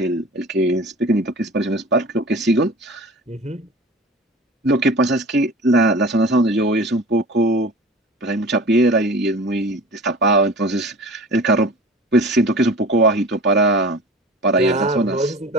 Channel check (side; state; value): both; normal; correlation 0.39